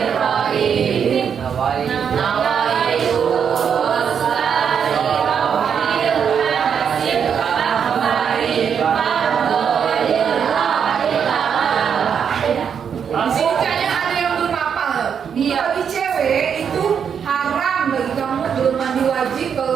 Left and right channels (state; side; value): quieter; left; 7.4 dB